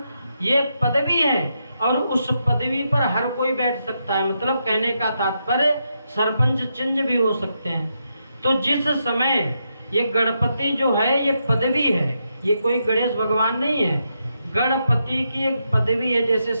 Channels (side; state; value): both; inverted; correlation -0.82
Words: ये पदवी है। और उस पदवी पर हर कोई बैठ सकता है। मतलब कहने का तात्पर्य सरपंच चेंज भी हो सकते हैं। तो जिस समय ये गणपति जो है ये पदवी है, ये कोई गणेश भगवान नहीं है। गणपति की एक पदवी है। जैसे